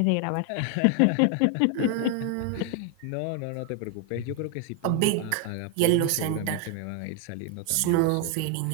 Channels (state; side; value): different; both; correlation 0.01